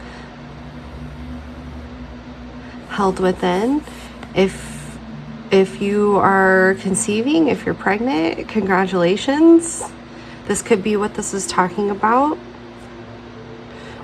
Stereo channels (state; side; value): identical; both; correlation 1.00